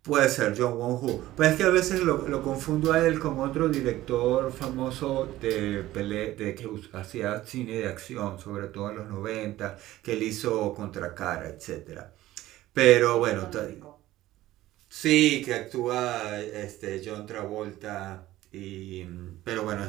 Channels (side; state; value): left; quieter; 15.6 dB